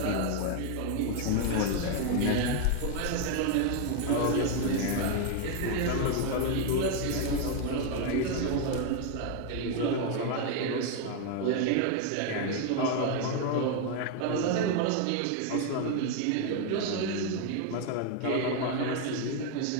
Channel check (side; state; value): both; different; correlation 0.01